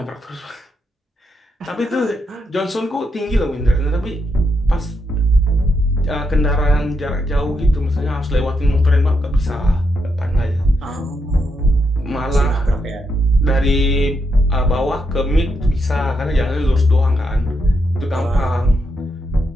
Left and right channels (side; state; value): both; normal; correlation 0.81